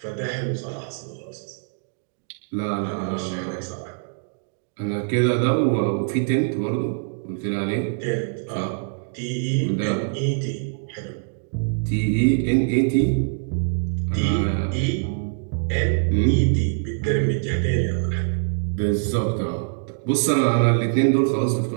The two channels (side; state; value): left; silent; digital silence